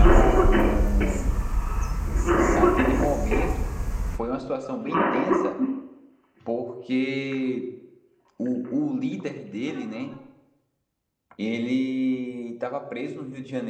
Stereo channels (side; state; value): both; identical; correlation 1.00